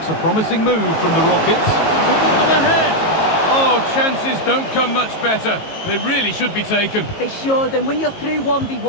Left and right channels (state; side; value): late; right; 18 ms